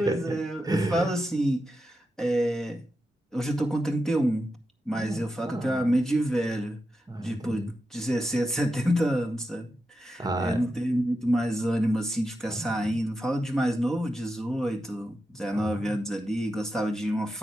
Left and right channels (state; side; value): normal; both; correlation 0.88